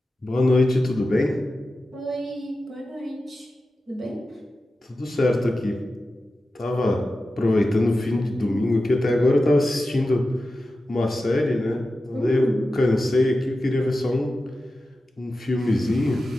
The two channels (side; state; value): both; normal; correlation 0.93